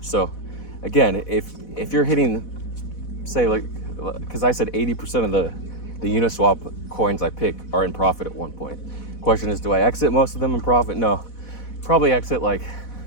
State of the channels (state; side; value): late; right; 4.1 ms